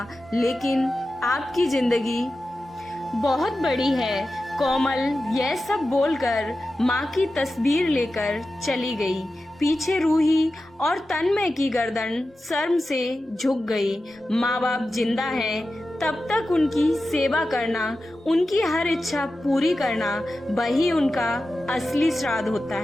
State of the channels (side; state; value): both; normal; correlation 0.93